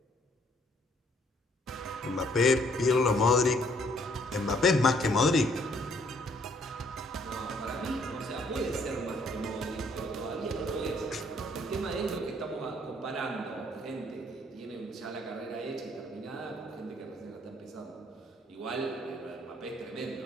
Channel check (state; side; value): normal; both; correlation 0.65